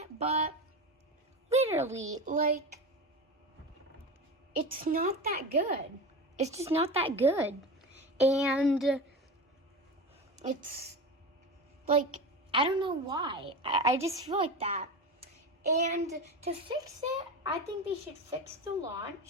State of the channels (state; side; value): normal; both; correlation 0.26